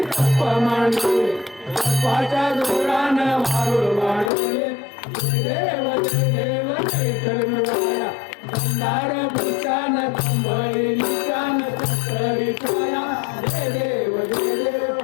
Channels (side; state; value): right; drops out; at 4.3 s